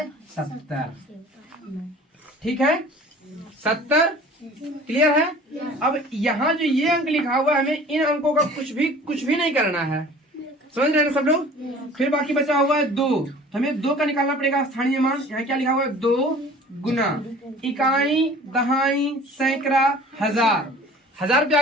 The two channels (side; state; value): both; normal; correlation 0.46